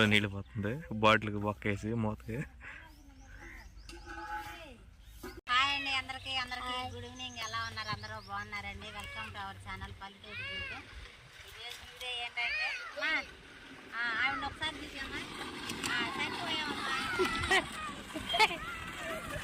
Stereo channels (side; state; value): both; identical; correlation 1.00